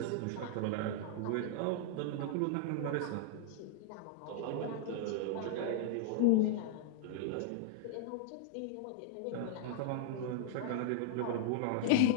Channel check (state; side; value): different; both; correlation 0.00